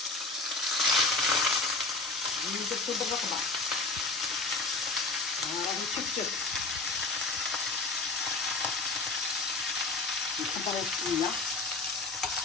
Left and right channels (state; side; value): quieter; right; 3.5 dB